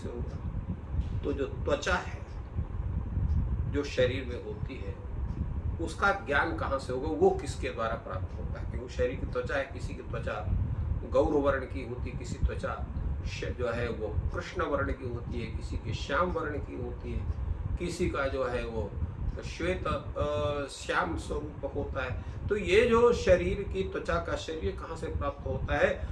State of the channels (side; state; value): both; identical; correlation 1.00